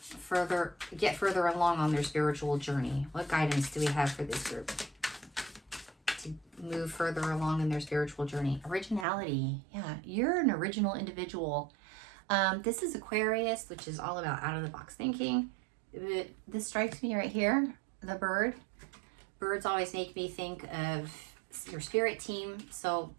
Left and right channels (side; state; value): left; drops out; at 9.1 s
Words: get further along on their spiritual journey? What guidance do we have for this group to move further along in their spiritual journey? Originality. Yeah, you're an original individual. This is Aquarius, which is all about out-of-the-box thinking. This strikes me right here, the bird. Birds always make me think of your spirit team. So